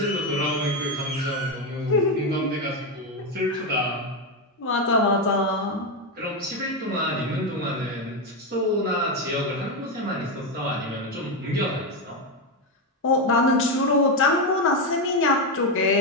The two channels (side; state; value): both; normal; correlation 0.09